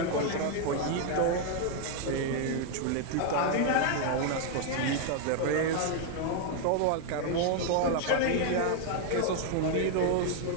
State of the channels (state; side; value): different; both; correlation 0.00